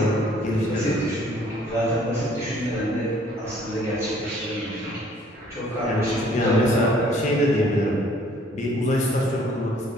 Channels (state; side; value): normal; both; correlation 0.58